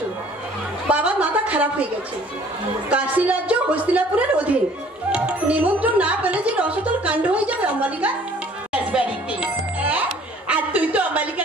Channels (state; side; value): normal; both; correlation 0.54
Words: বাবার মাথা খারাপ হয়ে গেছে। কাশী রাজ্য হস্তিনাপুরের অধীন। নিমন্ত্রণ না পেলে যে রসতল কাণ্ড হয়ে যাবে অম্বালিকা। রাজবাড়িতে আর তুই তো